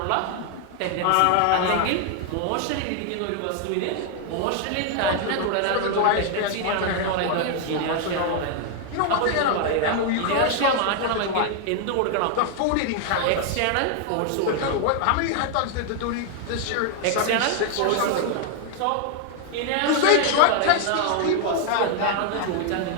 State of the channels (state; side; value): different; both; correlation 0.00